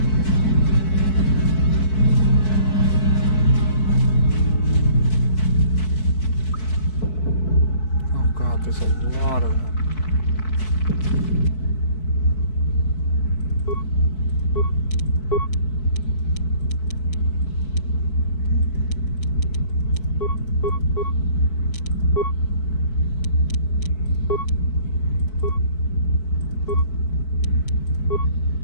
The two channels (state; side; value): late; right; 4.6 ms